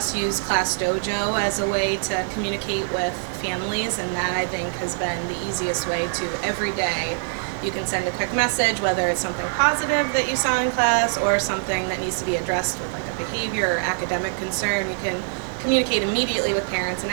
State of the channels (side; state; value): left; silent; digital silence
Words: use Class Dojo as a way to communicate with families, and that I think has been the easiest way to every day. You can send a quick message, whether it's something positive that you saw in class or something that needs to be addressed with like a behavior or academic concern. You can communicate immediately with parents, and